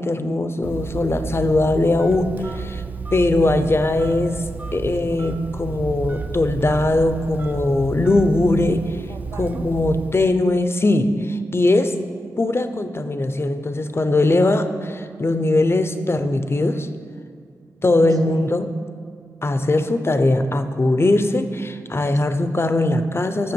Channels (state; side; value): normal; both; correlation 0.89